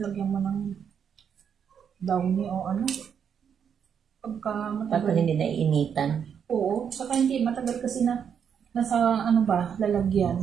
mo ng downy o pagka matagal. Pagka hindi naiinitan. Oo, saka hindi, matagal kasi na, nasa, lalagyan.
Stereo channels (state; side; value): quieter; left; 7.7 dB